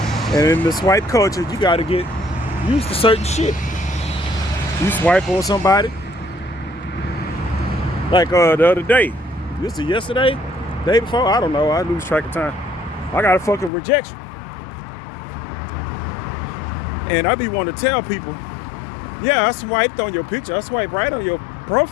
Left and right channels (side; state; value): right; drops out; at 13.7 s